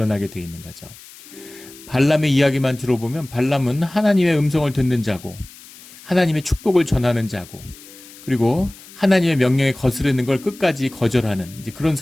되어 있는 거죠. 발람의 이야기만 들어보면 발람은 하나님의 음성을 듣는 자고 하나님의 축복을 전하는 자고 그리고 하나님의 명령에 거스르는 걸 끝까지 거절하는 이제 그런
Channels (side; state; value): left; noise; hiss, 20 dB below the sound